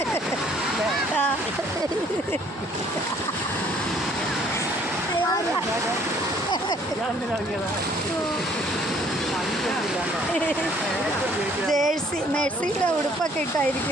ജേഴ്സി മെഴ്സിയുടെ ഉടുപ്പൊക്കെ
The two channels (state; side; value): normal; both; correlation 0.60